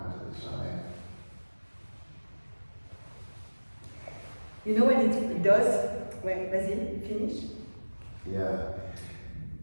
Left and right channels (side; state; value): both; inverted; correlation -1.00